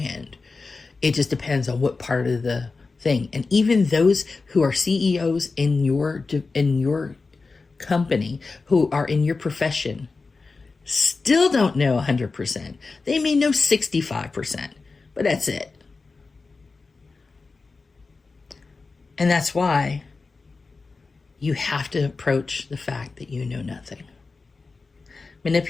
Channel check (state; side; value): quieter; right; 4.1 dB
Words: It just depends on what part of the thing. And even those who are CEOs in your company who are in your profession still don't know 100%. They may know 65%, but that's it. And that's why you have to approach the fact that you know nothing.